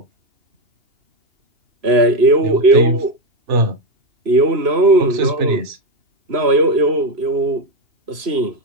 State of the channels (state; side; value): late; left; 3.0 ms